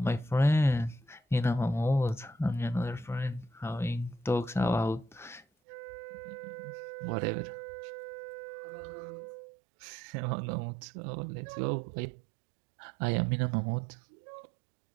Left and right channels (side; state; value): left; drops out; at 5.5 s